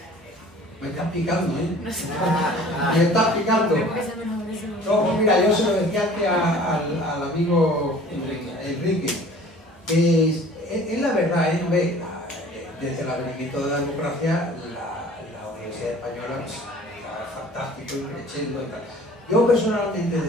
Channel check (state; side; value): normal; both; correlation 0.48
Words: me estás picando, ¿eh? Me estás picando. No, mira, yo se lo decía antes al amigo Enrique. Es la verdad, desde el advenimiento de la democracia, la Universidad Española está fantástico y creciendo y tal. Yo personalmente,